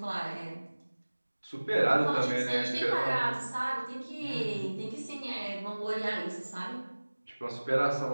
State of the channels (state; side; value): inverted; both; correlation -1.00